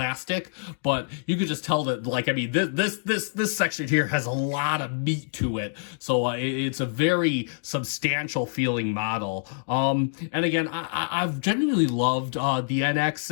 but you could just tell that, like, I mean, this section here has a lot of meat to it. So it's a very substantial feeling model. And again, I've genuinely loved the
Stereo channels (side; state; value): right; silent; digital silence